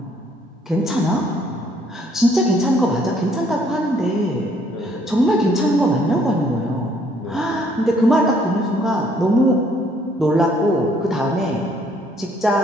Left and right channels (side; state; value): both; normal; correlation 0.65